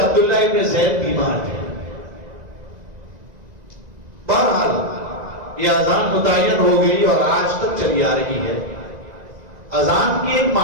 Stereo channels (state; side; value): late; left; 1.9 ms